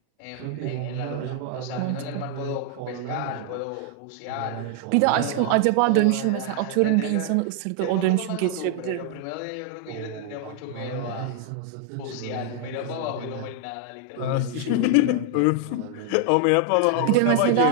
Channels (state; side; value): different; both; correlation 0.00